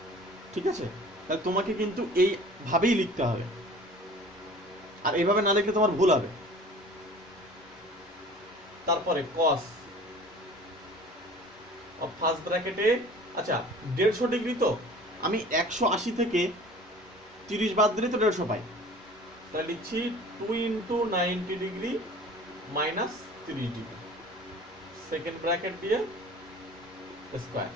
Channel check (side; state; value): both; normal; correlation 0.45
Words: ঠিক আছে, তাহলে তোমাকে কিন্তু এইভাবেই লিখতে হবে, আর এইভাবে না লিখলে তোমার ভুল হবে। তারপরে কস ফার্স্ট ব্র্যাকেটে, আচ্ছা 150 ডিগ্রি, তো আমি 180 থেকে 30 বাদ দিলে তো 150 পাই, তাহলে লিখছি 2 × 90 degree minus 30 degree, second bracket দিয়ে স্কোয়ার।